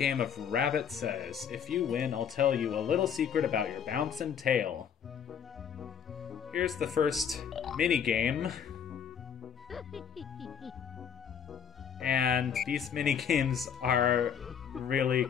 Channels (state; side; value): quieter; right; 7.9 dB